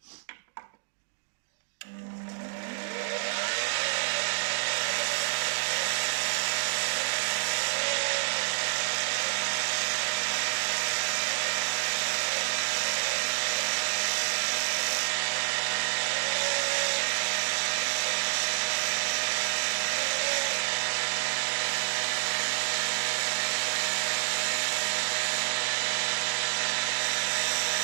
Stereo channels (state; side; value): silent; left; digital silence